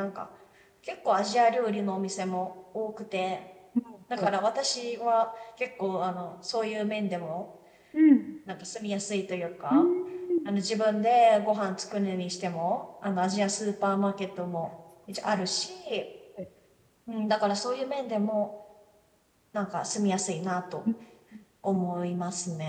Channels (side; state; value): both; identical; correlation 1.00